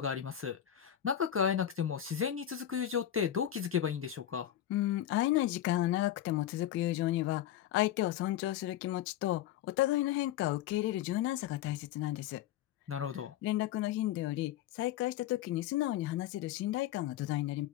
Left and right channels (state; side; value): quieter; right; 11.8 dB